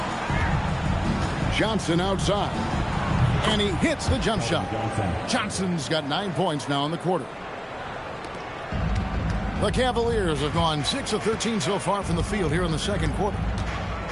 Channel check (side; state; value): both; identical; correlation 1.00